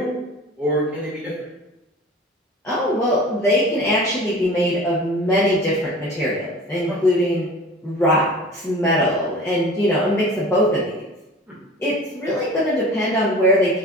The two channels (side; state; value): both; normal; correlation 0.40